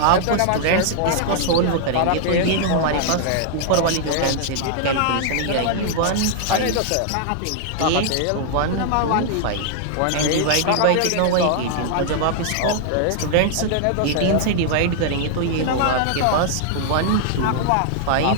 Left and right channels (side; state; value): both; different; correlation 0.00